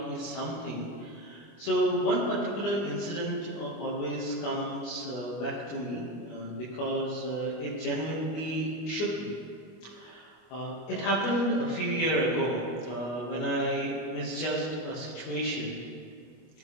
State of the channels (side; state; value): right; late; 25 ms